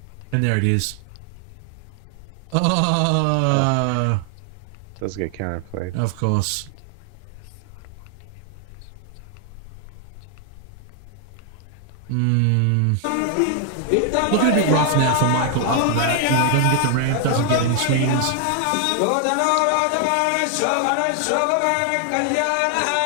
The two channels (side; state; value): both; different; correlation 0.00